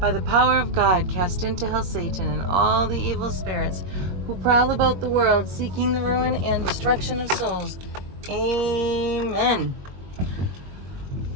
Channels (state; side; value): late; left; 21 ms